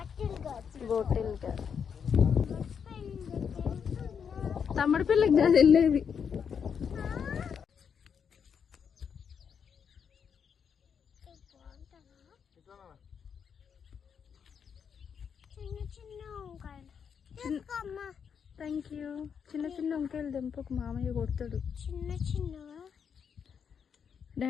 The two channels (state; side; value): quieter; right; 7.1 dB